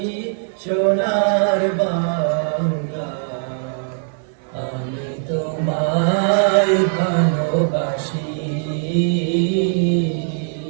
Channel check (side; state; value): left; silent; 55 dB below the other